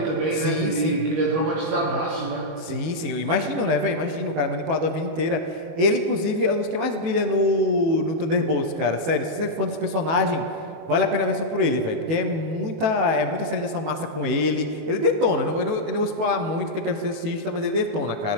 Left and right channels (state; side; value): late; left; 18 ms